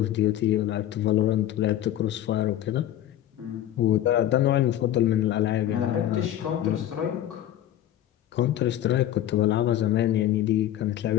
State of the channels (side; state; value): right; quieter; 12.3 dB